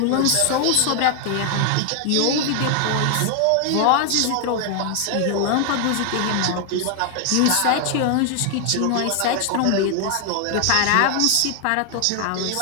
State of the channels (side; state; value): both; different; correlation 0.00